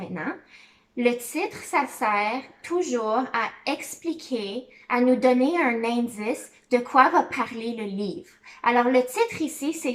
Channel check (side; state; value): both; identical; correlation 1.00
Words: Le titre, ça sert toujours à expliquer, à nous donner un indice de quoi va parler le livre. Alors, le titre ici, c'est